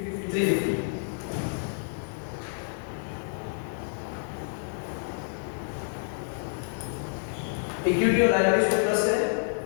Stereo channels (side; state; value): right; silent; digital silence